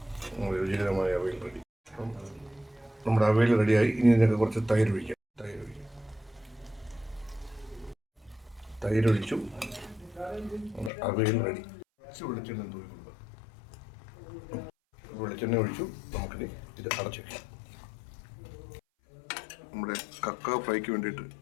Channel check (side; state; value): right; drops out; at 10.9 s